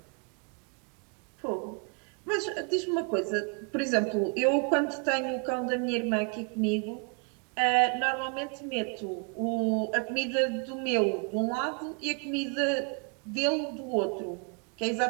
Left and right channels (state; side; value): quieter; left; 37.7 dB